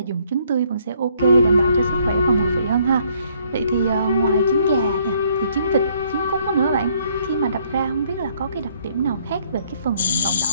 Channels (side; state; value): both; inverted; correlation -0.66